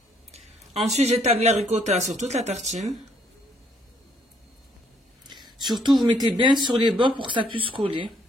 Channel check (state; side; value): normal; both; correlation 0.68